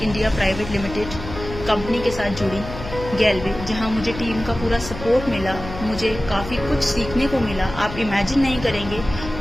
India private limited company के साथ जुड़ी गैलवे, जहां मुझे टीम का पूरा सपोर्ट मिला। मुझे काफ़ी कुछ सीखने को मिला। आप इमेजिन नहीं करेंगे,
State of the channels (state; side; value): noise; left; hum, 10 dB below the sound